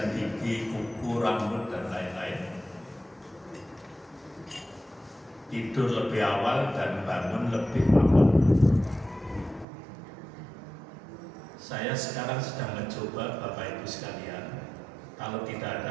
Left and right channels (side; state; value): left; drops out; at 9.7 s